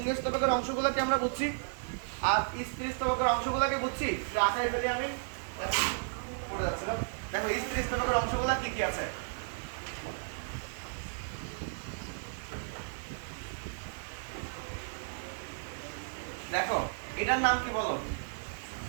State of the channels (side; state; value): left; silent; digital silence